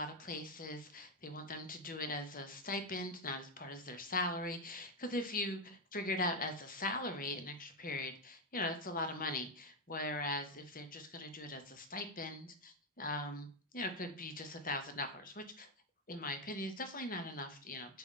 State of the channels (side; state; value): both; normal; correlation 0.06